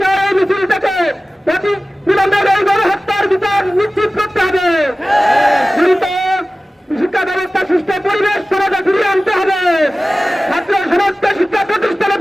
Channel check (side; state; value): both; normal; correlation 0.96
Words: চাই এই মিছিল থেকে বিলম্বের এই গণহত্যার বিচার নিশ্চিত করতে হবে। শিক্ষা ব্যবস্থা সুস্থ পরিবেশ সমাজে ফিরিয়ে আনতে হবে। ছাত্র সমাজকে শিক্ষা প্রতিষ্ঠানে